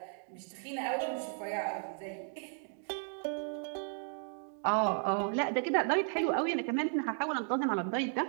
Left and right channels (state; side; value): silent; left; 55 dB below the other